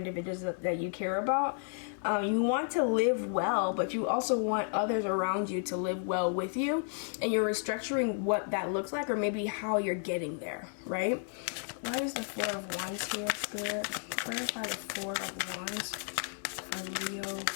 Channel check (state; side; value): silent; right; 55 dB below the other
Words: that you care about. You want to live well, but you also want others around you to live well with you, and you're restructuring what that looks like, or maybe how you're getting there, right? Why is the Four of Wands here, Spirit? Clarify the Four of Wands for Leo,